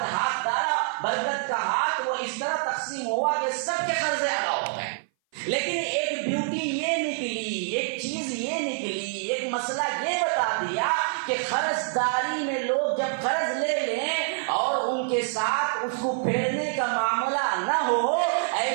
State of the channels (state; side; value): silent; left; 58 dB below the other